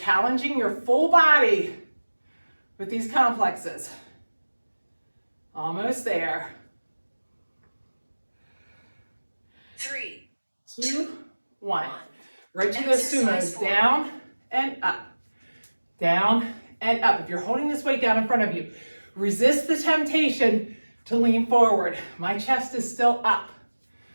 your full body with these complexes. Almost there. 3, 2, 1. Right to those sumos. Down and up. Down and up. If you're holding this weight down in front of you, resist the temptation to lean forward. My chest is still up.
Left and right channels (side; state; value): both; inverted; correlation -1.00